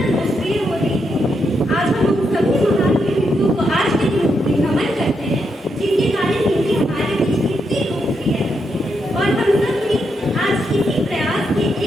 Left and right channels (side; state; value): both; normal; correlation 0.81